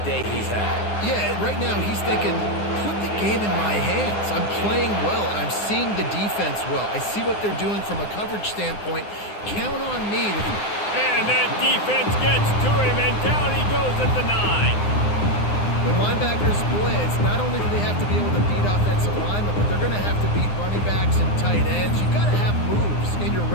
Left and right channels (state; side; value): late; right; 9.7 ms